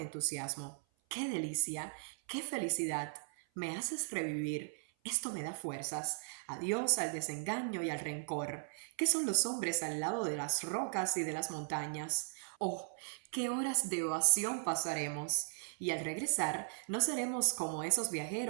¡Qué delicia! ¡Qué felicidad! Me haces revivir. Esto me da fuerzas. Adiós al desengaño y al rencor. ¿Qué son los hombres al lado de las rocas y de las montañas? Oh, qué horas de ovación pasaremos. Y al regresar, no seremos como esos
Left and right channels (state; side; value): silent; left; 53 dB below the other